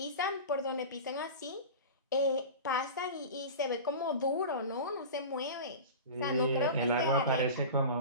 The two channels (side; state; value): both; inverted; correlation -0.31